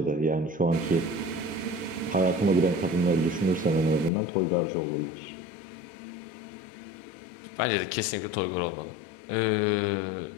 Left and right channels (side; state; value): right; drops out; at 4.1 s